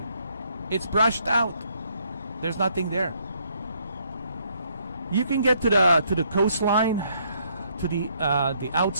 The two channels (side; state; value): both; inverted; correlation -0.69